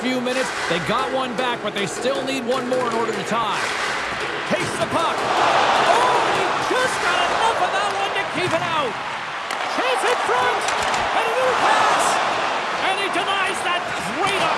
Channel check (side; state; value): both; identical; correlation 1.00